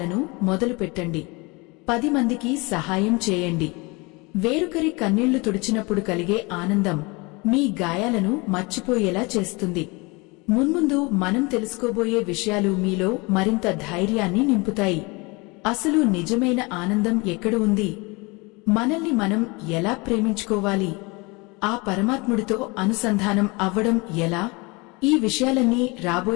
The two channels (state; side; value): quieter; right; 26.6 dB